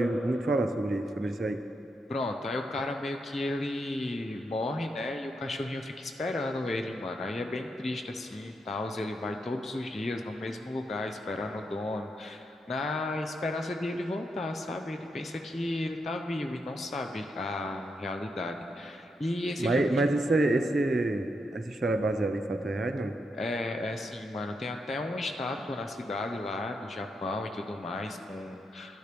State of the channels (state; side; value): normal; both; correlation 0.82